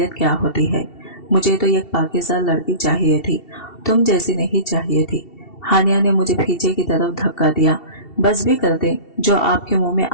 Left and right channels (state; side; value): late; right; 2.7 ms